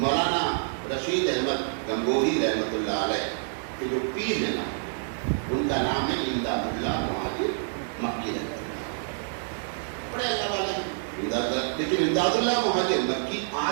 رشید احمد گنگوہی رحمۃ اللہ علیہ کے جو پیر ہیں نا, ان کا نام ہے امداد اللہ مہاجر مکی رحمۃ اللہ. بڑے اللہ والے ہیں, لیکن امداد اللہ مہاجر مکی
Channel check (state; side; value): silent; left; digital silence